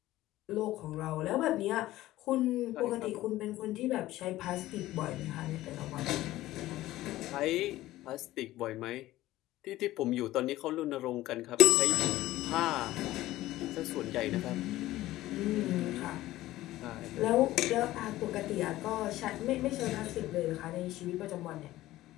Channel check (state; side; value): quieter; right; 15.9 dB